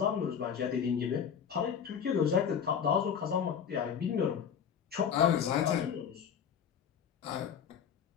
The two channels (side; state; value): right; quieter; 7.8 dB